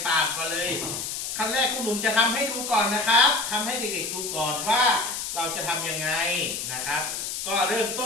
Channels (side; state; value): left; noise; hiss, 4 dB below the sound